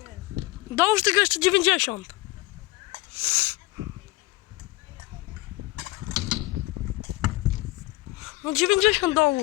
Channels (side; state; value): right; quieter; 20.1 dB